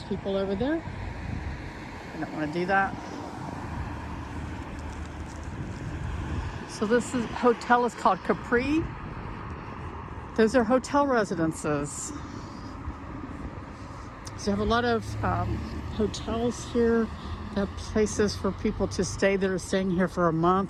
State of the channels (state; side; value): identical; both; correlation 1.00